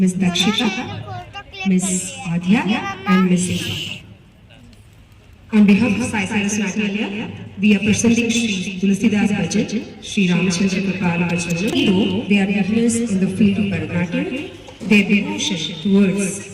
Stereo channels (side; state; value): both; identical; correlation 1.00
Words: Dakshita, Miss Adya, and Miss Eva. On behalf of Sai Saraswati, we are presenting Sri Tulsidas Bhajan, Sri Ramachandra Kripala Bhajan. Though they are beginners in the field of Bharatanatyam, their devotion